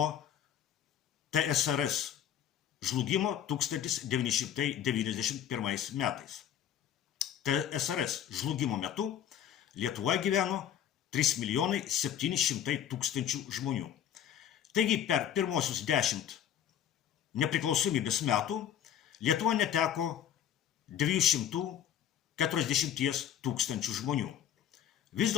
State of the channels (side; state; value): right; quieter; 9.9 dB